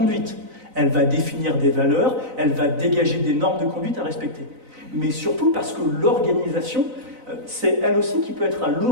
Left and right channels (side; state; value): left; late; 4.0 ms